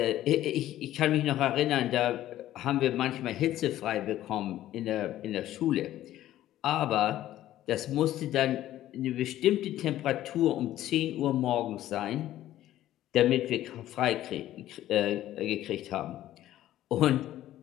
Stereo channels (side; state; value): right; quieter; 13.5 dB